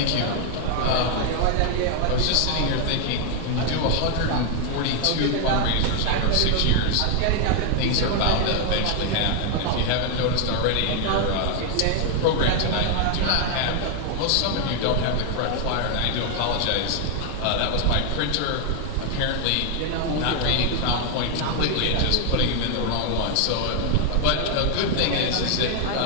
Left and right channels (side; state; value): both; different; correlation 0.00